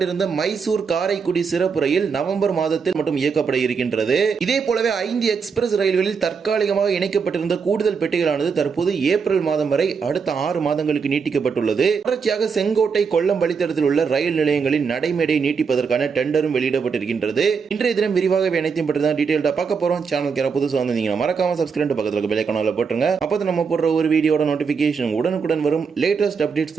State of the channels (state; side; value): quieter; left; 5.7 dB